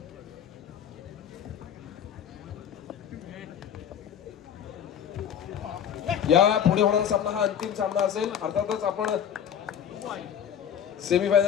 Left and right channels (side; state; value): right; quieter; 8.9 dB